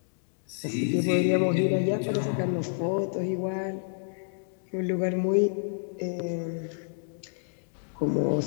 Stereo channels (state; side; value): silent; right; digital silence